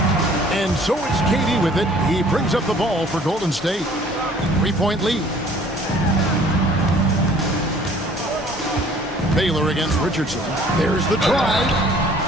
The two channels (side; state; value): both; normal; correlation 0.54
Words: And so it's KD with it. He brings up the ball for Golden State. 3-point lead. Baylor against Richardson. There's the drive.